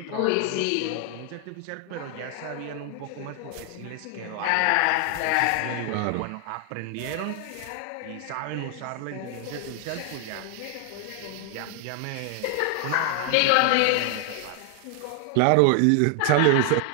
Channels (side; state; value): both; different; correlation 0.00